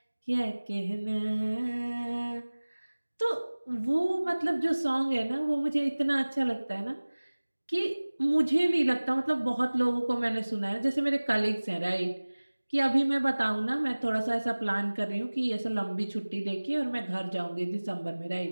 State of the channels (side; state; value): both; inverted; correlation -1.00